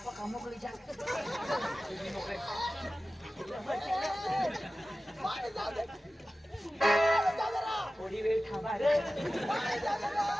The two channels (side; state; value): both; normal; correlation 0.95